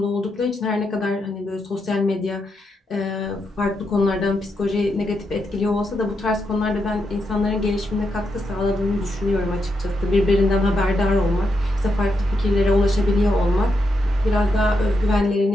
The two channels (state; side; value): normal; both; correlation 0.83